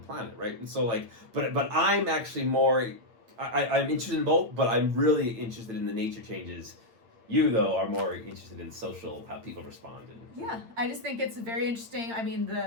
planet, right? And so like, but I'm actually more, I'm interested in both, but I'm really interested in the nature changes. You, though, are more interested in social, how people respond. Yeah, I just think it's very interesting. I mean,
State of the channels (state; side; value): late; left; 8.8 ms